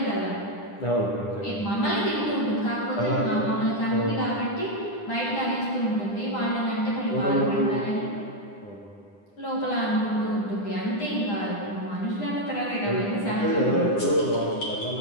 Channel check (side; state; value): right; late; 9.9 ms